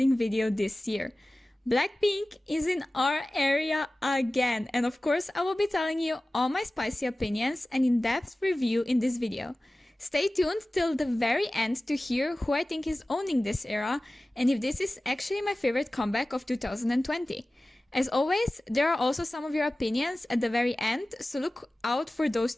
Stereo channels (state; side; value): normal; both; correlation 0.97